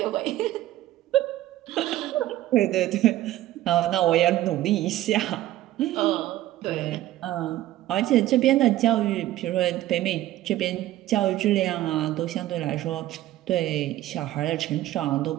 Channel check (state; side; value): quieter; left; 14.7 dB